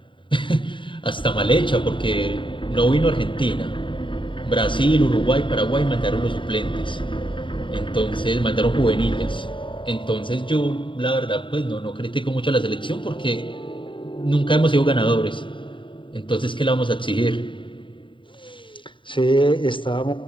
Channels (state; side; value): late; right; 0.24 ms